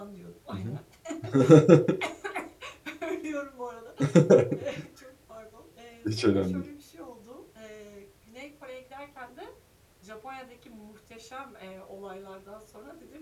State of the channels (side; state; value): both; identical; correlation 1.00